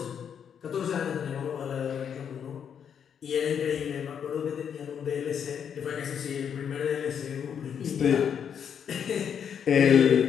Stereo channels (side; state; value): right; quieter; 7.9 dB